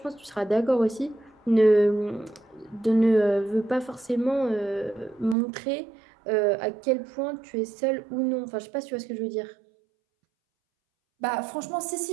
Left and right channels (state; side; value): drops out; left; at 5.4 s